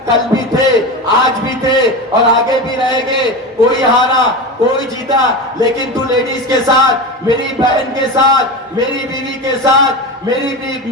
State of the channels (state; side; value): normal; both; correlation 0.24